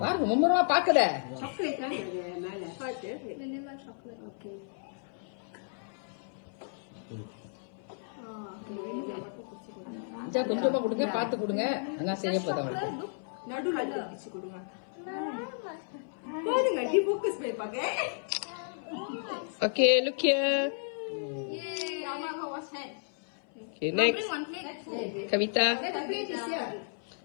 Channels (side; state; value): right; silent; 56 dB below the other